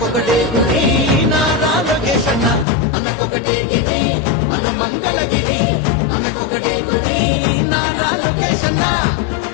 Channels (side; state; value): right; drops out; at 2.7 s